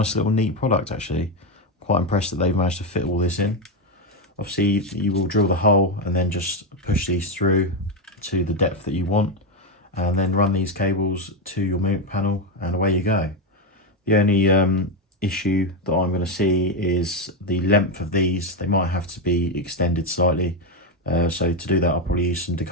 little neat product actually. Quite impressed that they've managed to fit all this in. Obviously you will drill the hole and then just push these through to the depth that you want, and then run these cables to your Mimic panel, and away you go. The only issue that I'm going to see is the length of these. They might have to be extended slightly, so to do that I'll probably use some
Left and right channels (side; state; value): both; normal; correlation 0.09